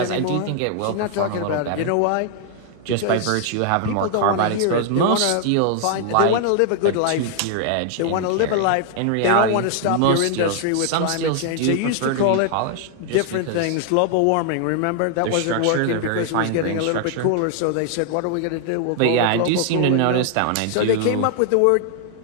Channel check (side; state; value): both; different; correlation 0.00